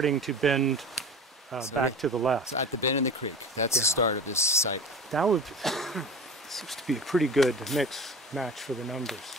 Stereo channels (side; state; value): both; normal; correlation 0.35